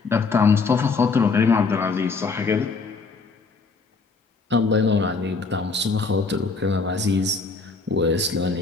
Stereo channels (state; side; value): quieter; right; 4.3 dB